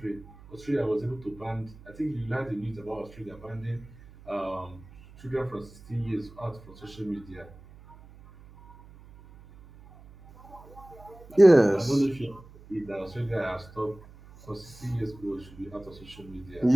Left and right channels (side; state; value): right; noise; hum, 21 dB below the sound